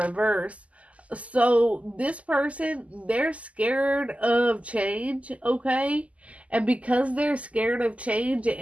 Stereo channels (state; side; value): late; left; 0.068 ms